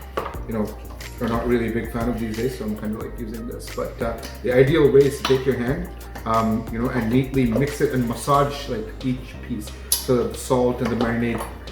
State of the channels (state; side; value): identical; both; correlation 1.00